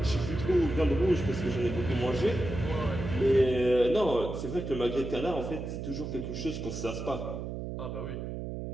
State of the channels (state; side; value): noise; right; hum, 6 dB below the sound